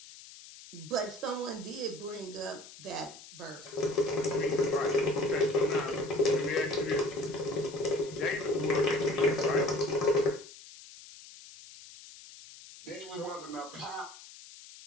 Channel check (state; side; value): noise; left; hiss, 17 dB below the sound